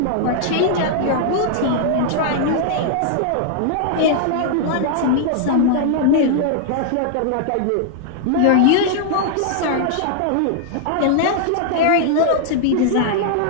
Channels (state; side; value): different; both; correlation -0.01